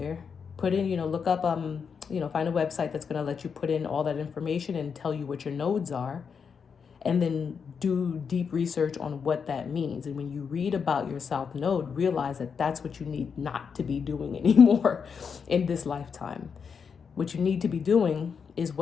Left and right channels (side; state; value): right; quieter; 6.3 dB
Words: Put in, look up, find a website that's going to let you put in all that information and tell you what your nodes are. And then do deep research on what that means. And when you read about your South Node, realize that that's what you need not to be doing anymore in this lifetime. What you need to be doing is